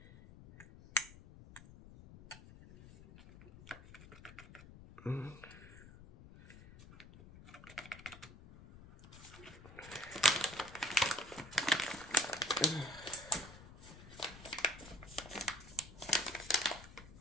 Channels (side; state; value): left; noise; rumble, 17 dB below the sound